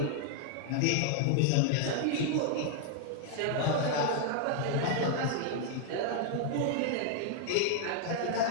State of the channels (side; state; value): both; different; correlation 0.00